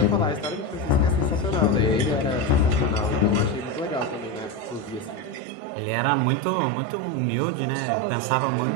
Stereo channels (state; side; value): drops out; left; at 5.4 s